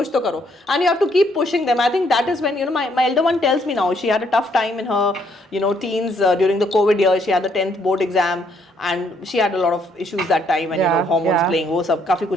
तो करो. And you have to keep pushing them. I think that is when my elder one tells me now, she had a tough time in her teens during the COVID year. She had the 10th board exam and she had a lot of issues that time, and hormones playing, वो सब काफी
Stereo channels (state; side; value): normal; both; correlation 0.69